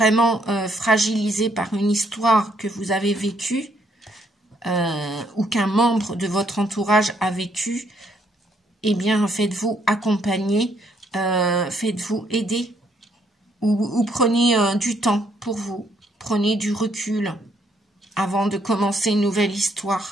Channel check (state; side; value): normal; both; correlation 0.70